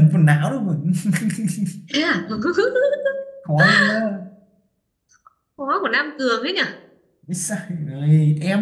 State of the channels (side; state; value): both; identical; correlation 1.00